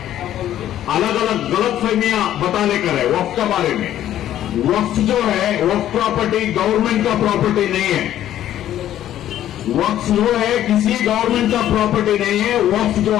अलग अलग गलत फहमियां बताने कर है वक्फ के बारे में। वक्फ जो है वक्फ प्रॉपर्टी गवर्नमेंट का प्रॉपर्टी नहीं है। वक्फ जो है किसी गवर्नमेंट का प्रॉपर्टी नहीं है। वक्फ जो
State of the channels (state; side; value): quieter; right; 12.0 dB